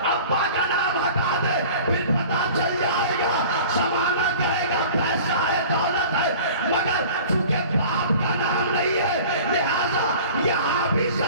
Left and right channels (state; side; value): inverted; both; correlation -0.43